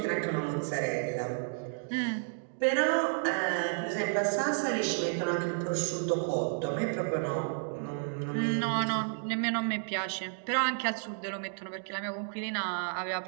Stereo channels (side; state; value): left; silent; digital silence